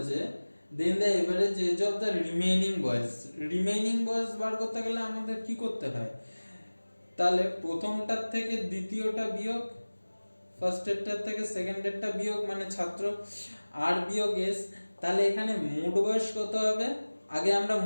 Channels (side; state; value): both; inverted; correlation -1.00